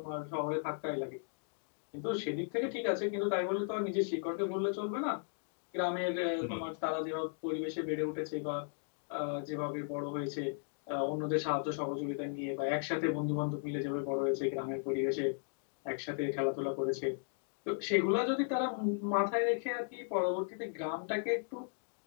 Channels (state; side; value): silent; right; digital silence